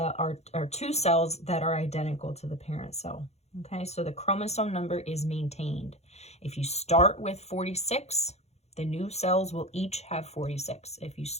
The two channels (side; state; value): right; late; 0.31 ms